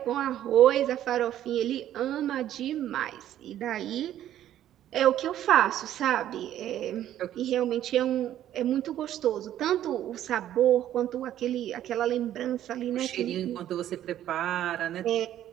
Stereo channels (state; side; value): quieter; left; 11.9 dB